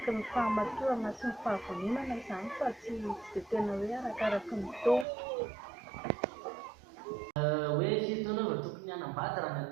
ny fahamatorana sy ny fahavononana izany fa tsy dia tena hoe arakaraky ny taona. Hoe firy taona vao tokony hanambady raha ny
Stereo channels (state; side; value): drops out; left; at 5.1 s